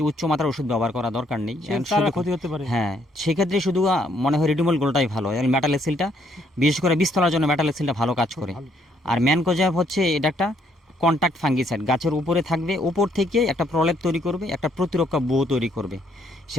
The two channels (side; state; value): both; normal; correlation 0.69